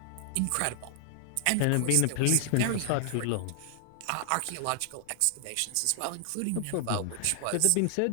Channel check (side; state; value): both; different; correlation 0.00